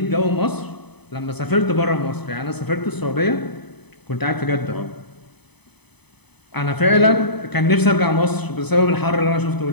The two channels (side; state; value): right; late; 0.99 ms